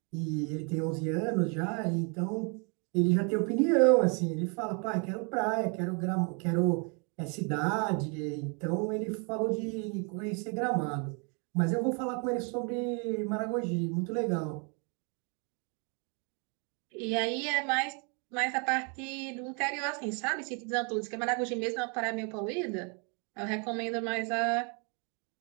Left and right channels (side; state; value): left; quieter; 36.1 dB